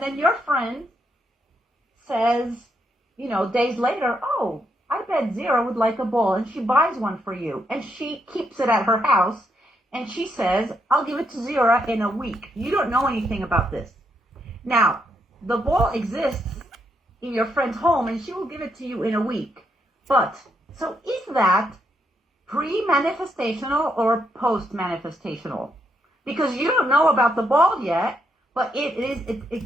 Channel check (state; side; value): normal; both; correlation 0.78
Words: your friend says, days later, "Oh, I bet Zero would like a ball," and she buys one for you, and she keeps it at her house, and she says, "I'll give it to Zero in a week." You don't know anything about this. Now, the ball exists in your friend's home, and she will give it to you in a week. But, so is that pre-manifestational or post-manifestational? Because you don't know about the ball yet, but it